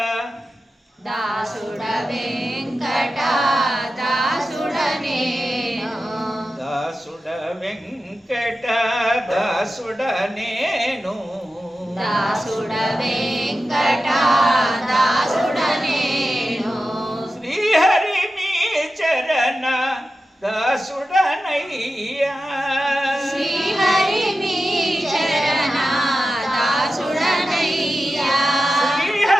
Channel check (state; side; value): normal; both; correlation 0.93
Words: దాసుడ వెంకట దాసుడనే దాసుడ వెంకట దాసుడ నేను దాసుడ వెంకట దాసుడ నేను శ్రీహరి మీ చరణ దాసుడనయ్యా శ్రీహరి మీ చరణ దాసుడనయ్యా